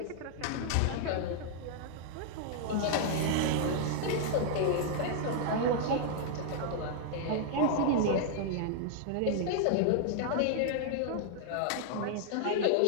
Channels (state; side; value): different; both; correlation -0.01